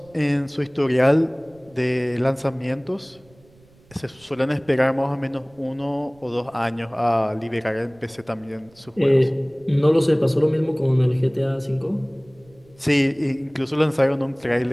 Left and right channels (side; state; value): right; noise; rumble, 28 dB below the sound